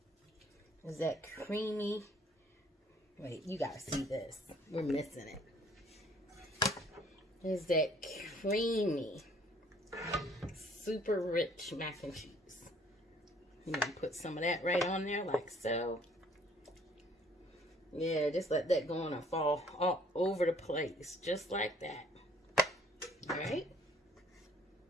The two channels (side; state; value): both; normal; correlation 0.59